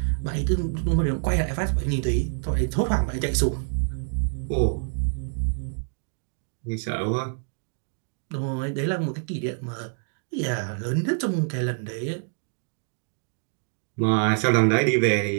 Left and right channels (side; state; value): left; silent; digital silence